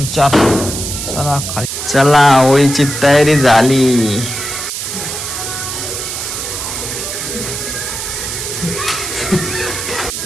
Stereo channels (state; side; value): noise; right; hiss, 5 dB below the sound